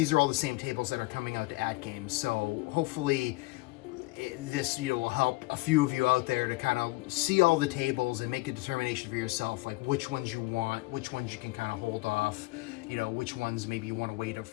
are all the same tables that are coming out to AtGames. So hopefully this will help a few of you out there to kind of see all the tables and make a determination for yourself, like which ones you want, which ones you can kind of hold off, which ones maybe you want to wait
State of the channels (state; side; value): quieter; right; 22.3 dB